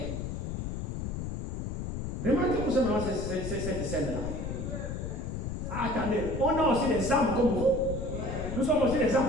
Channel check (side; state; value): left; noise; rumble, 4 dB below the sound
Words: Remarquez-vous seulement cette scène-là. Attendez, on a aussi des âmes comme vous. Nous sommes aussi des